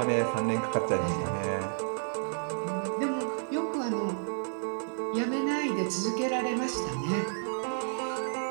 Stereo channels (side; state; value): left; silent; 57 dB below the other